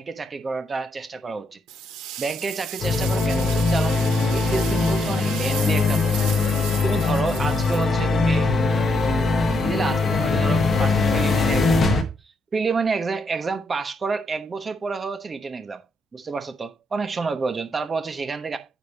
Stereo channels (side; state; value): both; normal; correlation 0.78